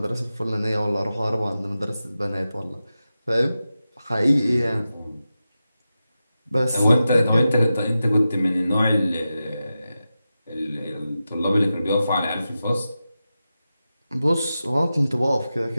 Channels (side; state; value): both; inverted; correlation -0.92